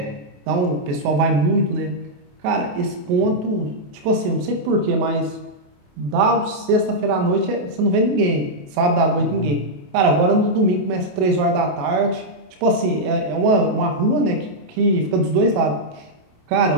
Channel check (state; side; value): late; left; 28 ms